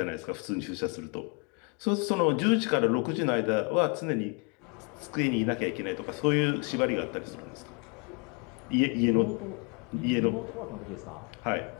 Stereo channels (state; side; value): quieter; right; 34.2 dB